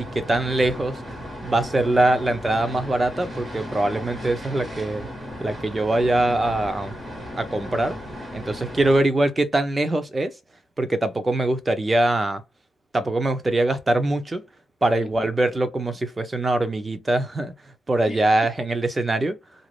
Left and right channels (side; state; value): both; normal; correlation 0.90